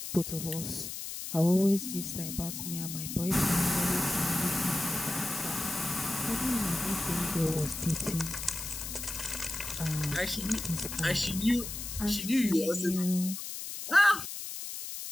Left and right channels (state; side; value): noise; left; hiss, 7 dB below the sound